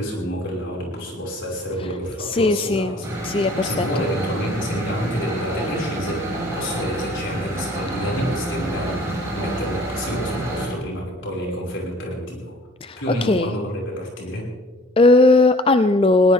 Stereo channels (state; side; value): normal; both; correlation 0.52